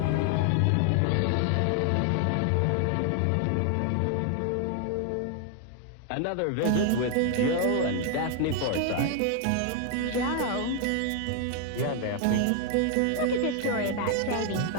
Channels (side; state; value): both; different; correlation 0.00